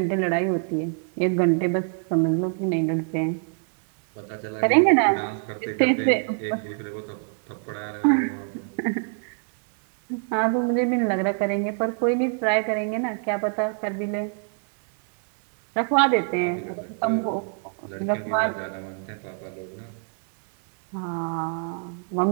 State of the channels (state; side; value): silent; left; 55 dB below the other